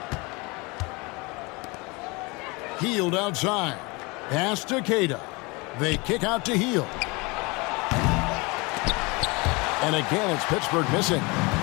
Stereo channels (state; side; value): quieter; right; 26.4 dB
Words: Hield outside. Pass to Queta. They kick out to Hield. And again, it's Pittsburgh missing.